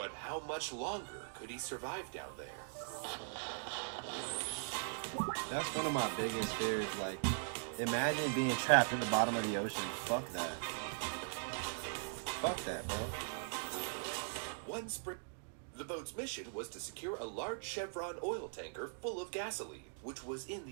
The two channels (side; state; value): left; silent; digital silence